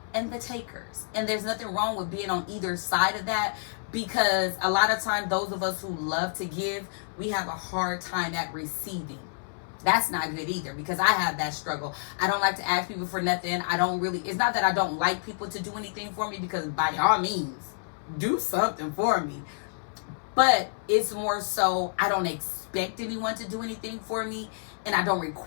and the takers. And there's nothing wrong with being on either side of that, because a lot of times those of us who love to give, we have a hard time at receiving. That's not good either, because I have that struggle. I don't like to ask people for nothing. It's not that I don't like people to do anything for me, because by all means, do something for me. But it's more so I don't expect anyone to do anything for me, and I don't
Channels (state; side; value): silent; right; 59 dB below the other